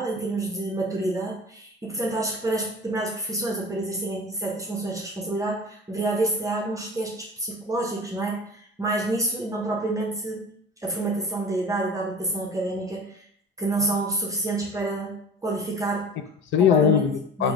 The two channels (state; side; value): normal; both; correlation 0.39